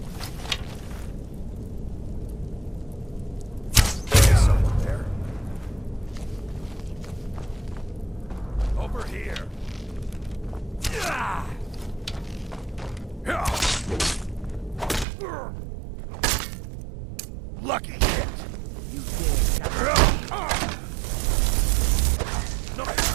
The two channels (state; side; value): drops out; left; at 15.1 s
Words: Lucky hit! You dare No!